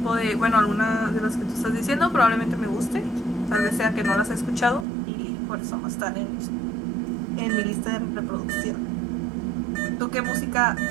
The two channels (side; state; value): left; drops out; at 4.9 s